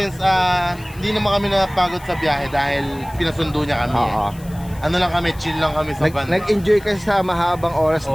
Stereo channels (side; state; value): left; noise; hiss, 22 dB below the sound